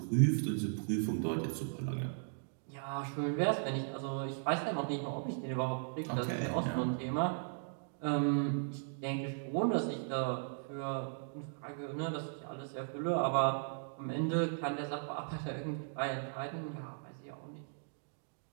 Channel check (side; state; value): left; silent; digital silence